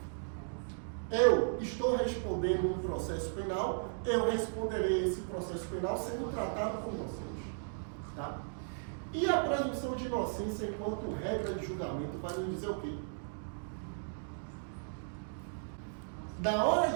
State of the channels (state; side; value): silent; left; digital silence